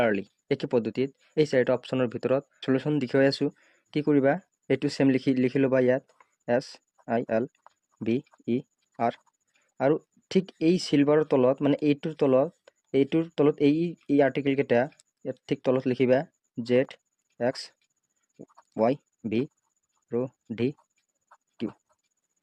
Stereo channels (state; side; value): identical; both; correlation 1.00